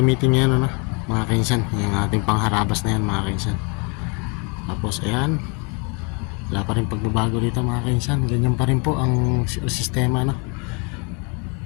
ngayon, no? Mga kaisan, yung ating pangharabas na yan, mga kaisan. Tapos, ayan. Wala pa rin pagbabago dito, mga kainsan. Ganyan pa rin po ang sistema, no?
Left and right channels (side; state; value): right; quieter; 32.5 dB